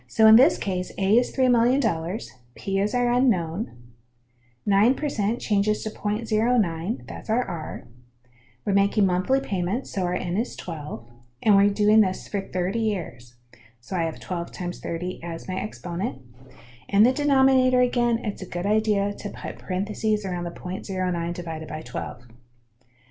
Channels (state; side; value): identical; both; correlation 1.00